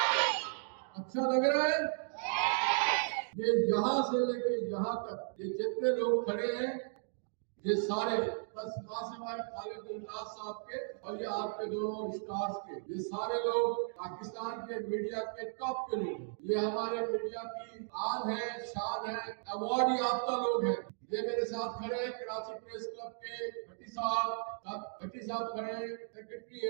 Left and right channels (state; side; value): silent; left; digital silence